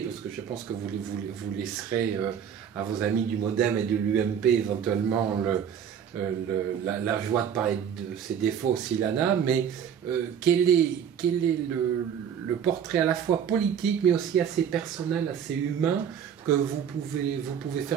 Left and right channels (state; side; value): quieter; left; 8.3 dB